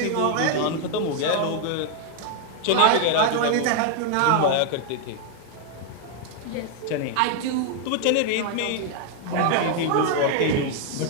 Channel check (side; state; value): both; different; correlation 0.00